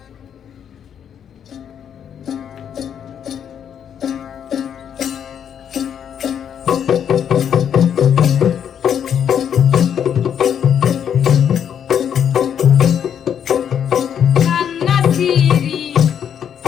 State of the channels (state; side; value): quieter; right; 8.6 dB